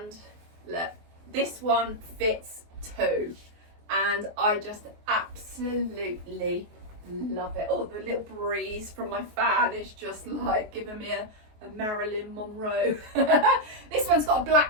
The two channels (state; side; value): late; left; 23 ms